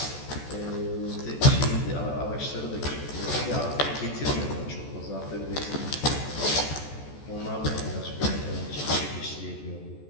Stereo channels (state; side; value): late; right; 14 ms